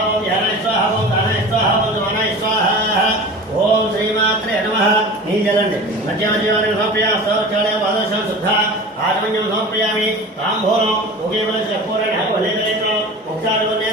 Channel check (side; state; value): both; normal; correlation 0.36